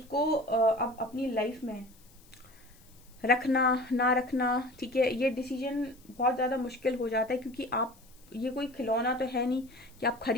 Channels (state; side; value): noise; left; hiss, 27 dB below the sound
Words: अब अपनी लाइफ में रखना ना रखना, ठीक है, ये डिसीजन बहुत ज्यादा मुश्किल हो जाता है, क्योंकि आप ये कोई खिलौना तो है नहीं कि आप